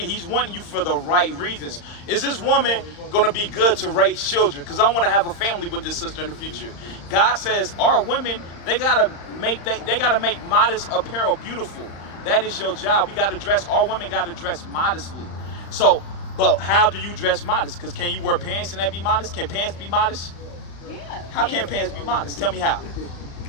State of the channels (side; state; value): right; late; 35 ms